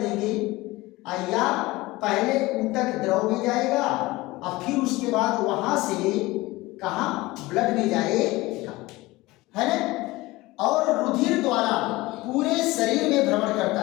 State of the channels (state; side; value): quieter; right; 20.1 dB